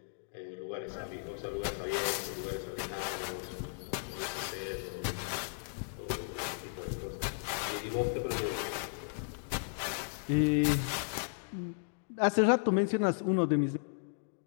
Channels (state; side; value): silent; right; digital silence